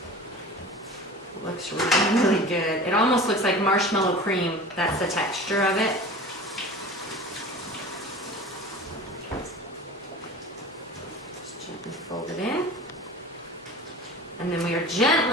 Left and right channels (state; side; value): normal; both; correlation 0.37